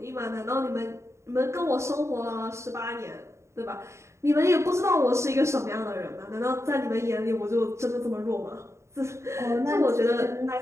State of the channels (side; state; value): left; late; 0.14 ms